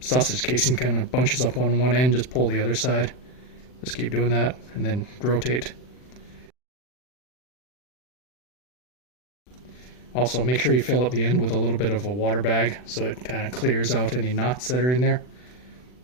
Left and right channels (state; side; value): late; right; 40 ms